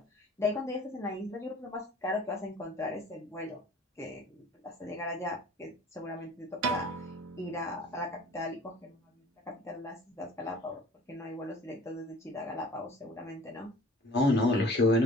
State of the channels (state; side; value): normal; both; correlation 0.47